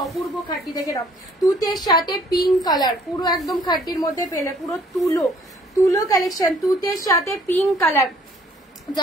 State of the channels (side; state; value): both; normal; correlation 0.59